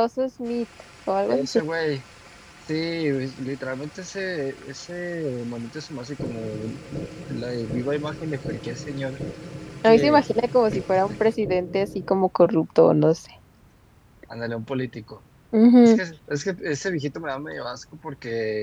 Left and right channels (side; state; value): both; identical; correlation 1.00